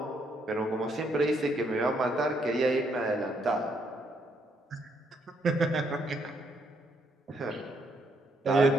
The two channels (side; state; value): both; normal; correlation 0.73